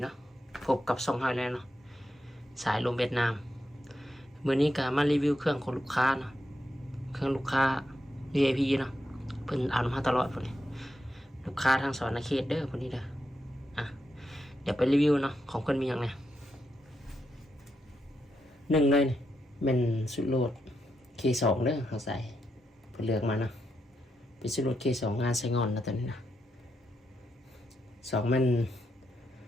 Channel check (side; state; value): both; normal; correlation 0.83